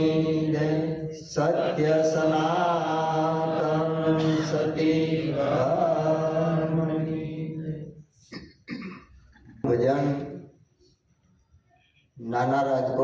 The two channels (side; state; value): both; identical; correlation 1.00